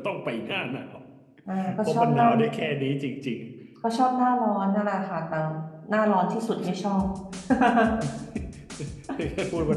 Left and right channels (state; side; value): identical; both; correlation 1.00